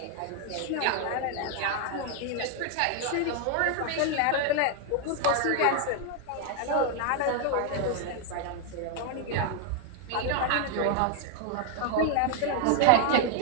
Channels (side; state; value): both; different; correlation 0.00